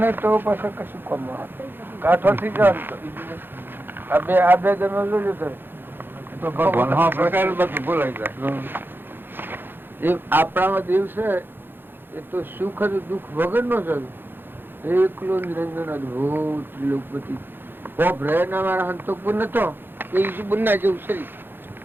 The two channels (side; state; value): left; late; 0.10 ms